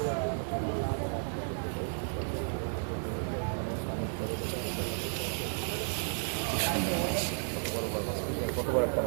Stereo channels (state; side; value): silent; left; digital silence